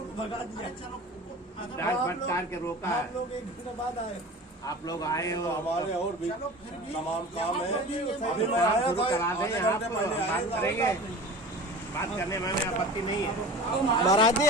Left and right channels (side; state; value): both; normal; correlation 0.36